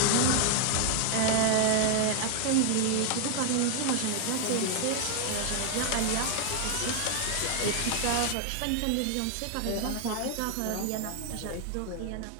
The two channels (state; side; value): different; both; correlation 0.00